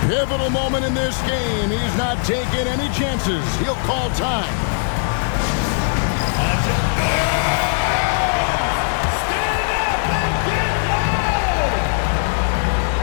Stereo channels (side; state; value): right; silent; digital silence